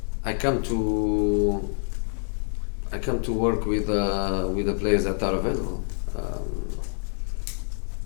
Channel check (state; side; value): silent; right; 61 dB below the other